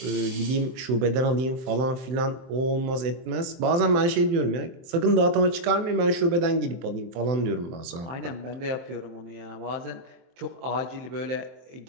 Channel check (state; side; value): late; left; 24 ms